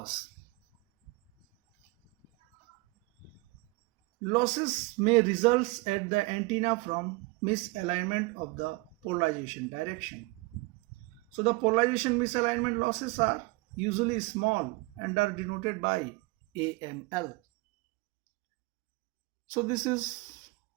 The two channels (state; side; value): quieter; left; 24.9 dB